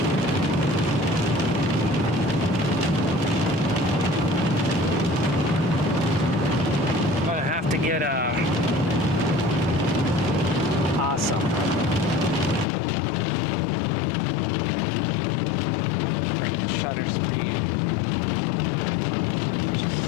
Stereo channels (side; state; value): right; drops out; at 12.7 s